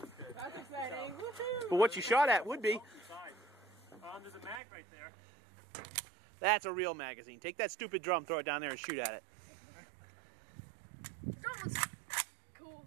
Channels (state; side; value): drops out; left; at 4.6 s